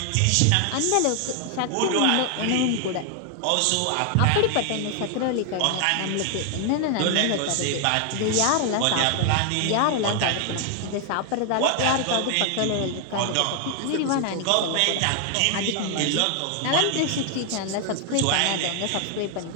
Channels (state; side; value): different; both; correlation 0.00